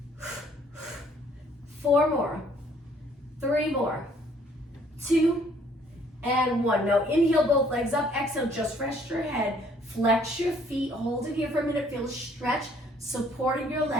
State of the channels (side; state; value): both; normal; correlation 0.61